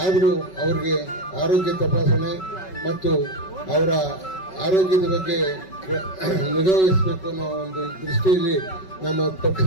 ಆದರೂ ಅವರಿಗೆ ಆರೋಗ್ಯ ತಪಾಸಣೆ ಮತ್ತು ಅವರ ಆರೋಗ್ಯದ ಬಗ್ಗೆ ನಿಗಾವಹಿಸಬೇಕು ಅನ್ನೋ ಒಂದು ದೃಷ್ಟಿಯಲ್ಲಿ ನಮ್ಮ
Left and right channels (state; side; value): late; right; 5.3 ms